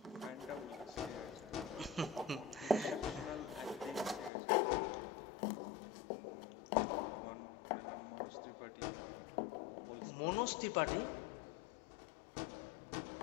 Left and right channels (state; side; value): drops out; right; at 4.3 s